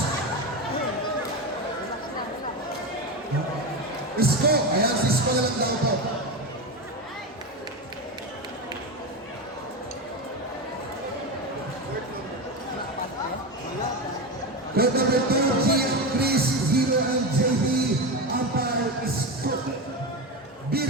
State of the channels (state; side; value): normal; both; correlation 0.18